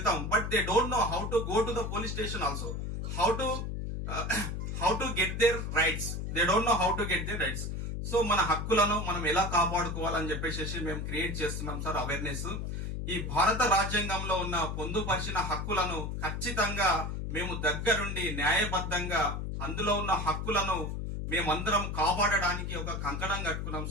but they don't know how to go to the police station also, how to get there rights. They don't know how to get there rights. So మన హక్కులను మనం ఎలా కాపాడుకోవాలని చెప్పేసి మేము క్రియేట్ చేస్తున్నాం సార్ అవేర్నెస్. ఈ భారత రాజ్యాంగంలో ఉన్న పొందుపరిచిన హక్కులను ఖచ్చితంగా మేము దగ్గరుండి న్యాయబద్ధంగా అందులో ఉన్న హక్కులను మేమందరం కాపాడడానికి ఒక కంకణం కట్టుకున్నాం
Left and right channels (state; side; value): noise; left; hum, 4 dB below the sound